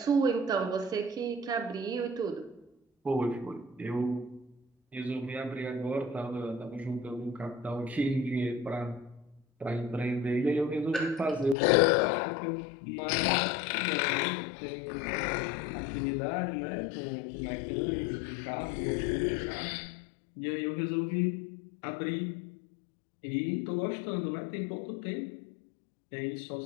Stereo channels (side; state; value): right; drops out; at 11.6 s